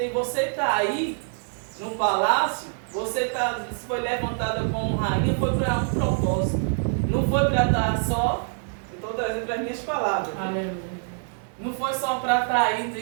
está aí no palácio, foi levantada como rainha, foi para um propósito. Não foi para estar só, estou trazendo para as minhas palavras. Aleluia. Não foi só para estar aí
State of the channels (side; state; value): left; silent; 61 dB below the other